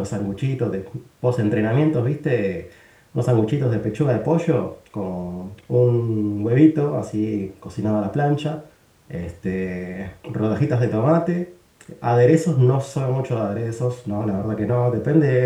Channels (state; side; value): identical; both; correlation 1.00